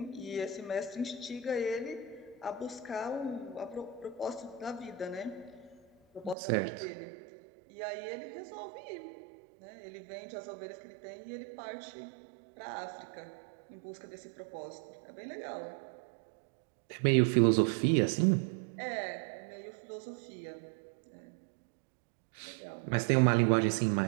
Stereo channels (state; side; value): drops out; left; at 6.4 s